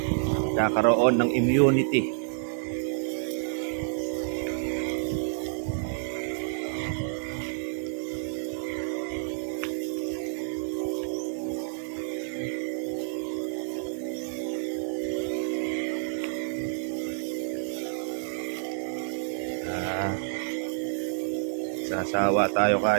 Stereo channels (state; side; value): silent; left; digital silence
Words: Kakaroon ng immunity. Ah, sasawa tayo